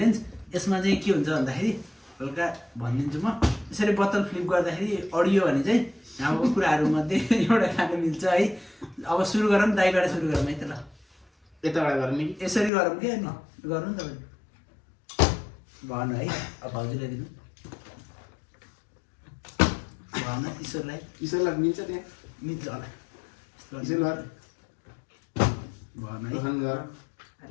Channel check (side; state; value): right; drops out; at 12.7 s